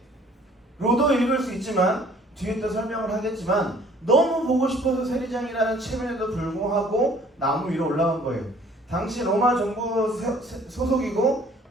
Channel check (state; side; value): normal; both; correlation 0.55